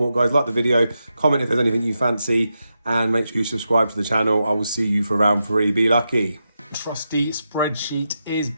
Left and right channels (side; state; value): both; inverted; correlation -0.87